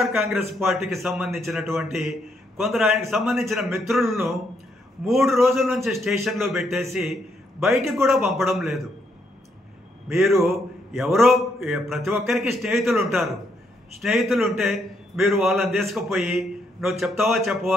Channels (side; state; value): both; normal; correlation 0.75